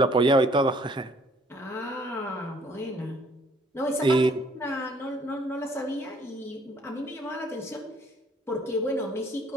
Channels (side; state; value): both; normal; correlation 0.61